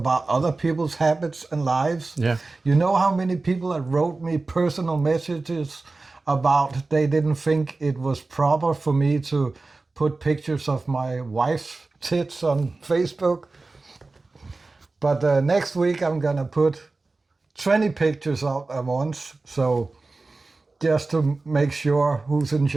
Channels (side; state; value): left; quieter; 3.5 dB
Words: other people's habits and lives. Yeah. You know how many people that wrote me personal messages about they didn't think it was proper for me to put pictures of my wife's tits on Facebook? But next week I'm gonna put 20 pictures out at once, so just to make sure who's in